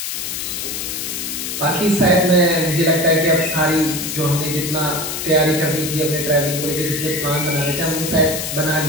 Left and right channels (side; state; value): left; noise; hiss, 4 dB below the sound